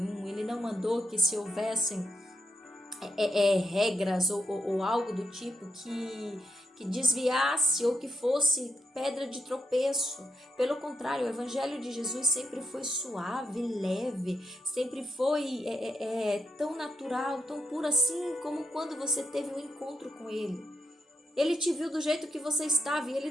Ele não mandou que se houvessem regras ou algo do tipo que desviasse ou que fosse pedra de tropeço. Pelo contrário, o evangelho de Jesus sempre foi suave, leve, sempre foi tão natural, tão puro assim como quando você teve um encontro com ele. Ele te viu do jeito que você estava e ele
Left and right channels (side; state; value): both; normal; correlation 0.81